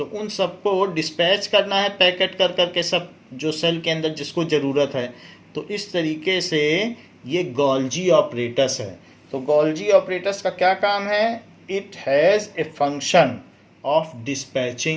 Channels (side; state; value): both; identical; correlation 1.00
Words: उन सबको डिस्पैच करना है पैकेट कर करके, सब जो सेल के अंदर जिसको ज़रूरत है। तो इस तरीके से ये गोल्जी ऑपरेटस है। तो गोल्जी ऑपरेटस का क्या काम है? It has a function of